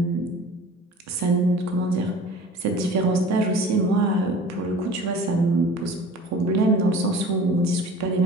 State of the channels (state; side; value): normal; both; correlation 0.42